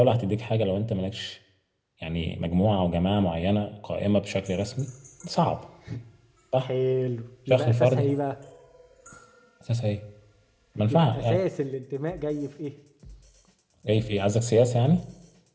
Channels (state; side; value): identical; both; correlation 1.00